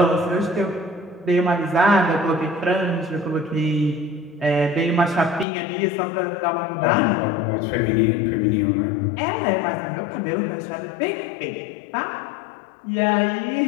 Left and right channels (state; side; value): drops out; right; at 5.5 s